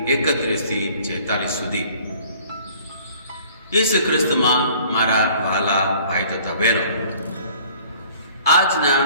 31-46 સુધી. ઈસુ ખ્રિસ્તમાં મારા વહાલા ભાઈ તથા બહેનો, આજના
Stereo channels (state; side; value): inverted; both; correlation -0.53